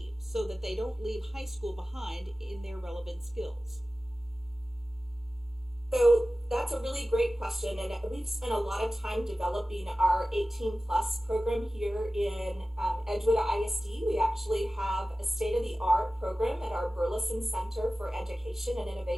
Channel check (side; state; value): both; normal; correlation 0.96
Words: so that they don't leave high school behind in their relevant skills. So that's a really great question, and we've spent a lot of time developing our 18 plus program here in Edgewood ISD. We actually have a state-of-the-art program at our Burleson Center for Education and